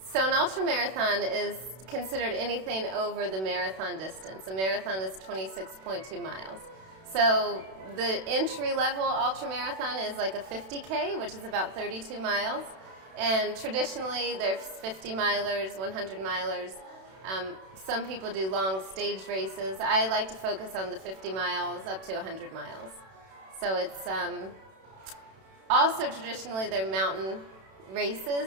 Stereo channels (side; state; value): left; late; 32 ms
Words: So an ultra marathon is considered anything over the marathon distance. A marathon is 26.2 miles. So the entry level ultra marathon is like a 50K, which is about 32 miles. And traditionally there's 50 milers, 100 milers. Some people do long stage races. I like to focus on the 50 miles up to 100 miles. So it's also traditionally they're mountain